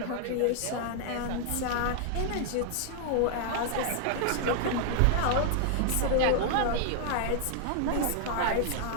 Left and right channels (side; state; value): both; different; correlation 0.00